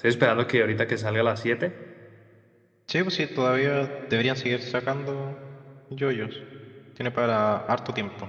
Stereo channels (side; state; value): both; identical; correlation 1.00